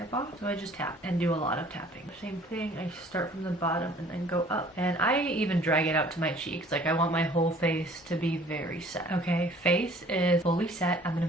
off, so I just tap and do a lot of tapping. Same thing, I start from the bottom and then go up. And I even drag it out to my cheeks. Like, I want my whole face to be very set. Okay, face is fully set. I'm gonna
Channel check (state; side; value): normal; both; correlation 0.53